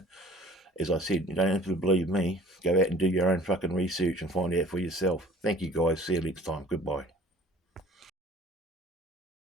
As I said, you don't have to believe me. Go out and do your own fucking research and find out for yourself. Thank you, guys. See you next time. Goodbye.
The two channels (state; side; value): normal; both; correlation 0.50